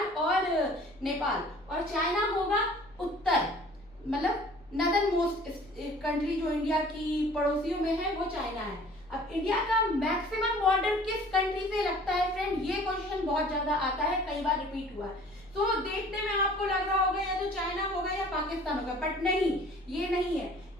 और नेपाल, और चाइना होगा उत्तर, मतलब नॉर्दर्न मोस्ट कंट्री जो इंडिया की पड़ोसियों में है वो चाइना है। अब इंडिया का मैक्सिमम बॉर्डर किस कंट्री से लगता है फ्रेंड, ये क्वेश्चन बहुत ज्यादा आता है, कई बार रिपीट हुआ है। तो देखने में आपको लग रहा होगा या तो चाइना होगा या पाकिस्तान होगा, बट नहीं, ये नहीं है।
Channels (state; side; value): noise; left; hum, 27 dB below the sound